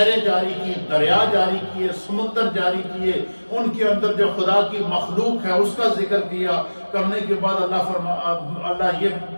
جاری کی، دریا جاری کیے، سمندر جاری کیے، ان کے اندر جو خدا کی مخلوق ہے اس کا ذکر کیا۔ کرنے کے بعد اللہ یہ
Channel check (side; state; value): both; inverted; correlation -1.00